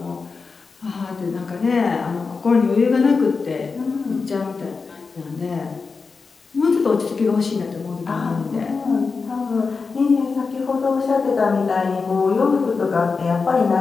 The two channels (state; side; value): quieter; right; 4.7 dB